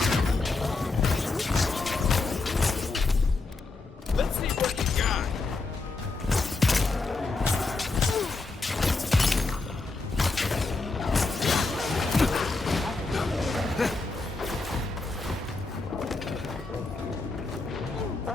Let's see what you got.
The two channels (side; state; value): right; quieter; 3.6 dB